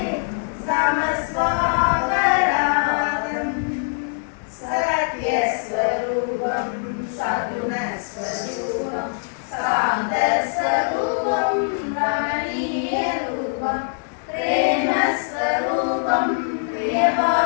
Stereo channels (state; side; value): silent; right; 59 dB below the other